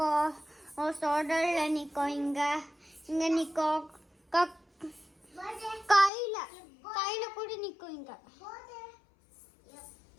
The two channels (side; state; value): right; drops out; at 6.1 s